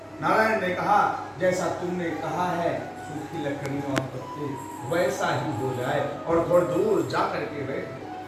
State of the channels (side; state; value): both; identical; correlation 1.00